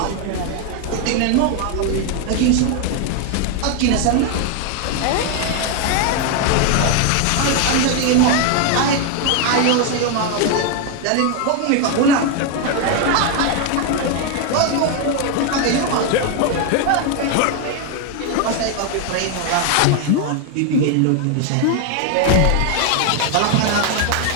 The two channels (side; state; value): both; different; correlation 0.01